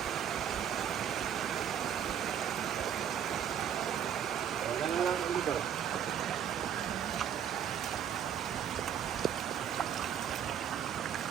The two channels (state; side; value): quieter; left; 9.1 dB